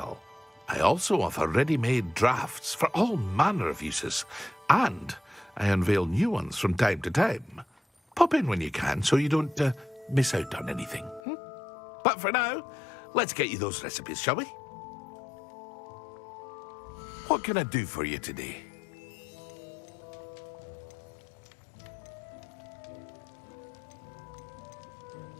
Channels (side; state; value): right; drops out; at 11.2 s